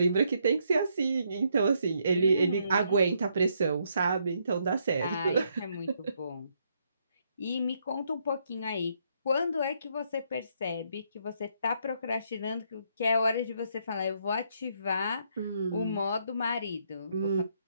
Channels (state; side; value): inverted; both; correlation -0.74